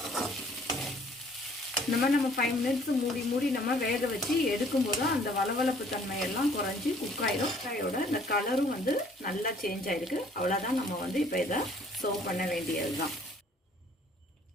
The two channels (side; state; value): both; normal; correlation 0.58